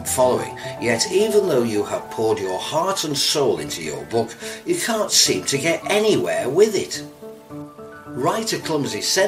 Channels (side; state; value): both; identical; correlation 1.00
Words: following, yet even though you have poured your heart and soul into your book, you can't seem to get anywhere with it? Write a clumsy